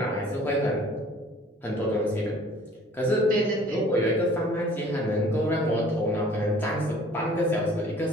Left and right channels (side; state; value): both; normal; correlation 0.52